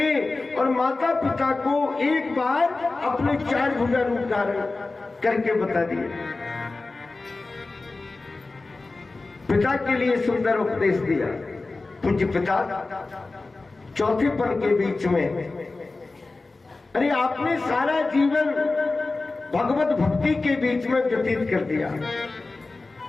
और माता पिता को एक बार अपने 4 भुजा रूप धारण करके बता दिए। पिता के लिए सुंदर उपदेश दिया। पूज्य पिता चौथे पल के बीच में, अरे आपने सारा जीवन भगवत भक्ति के बीच में व्यतीत कर दिया,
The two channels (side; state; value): right; quieter; 3.5 dB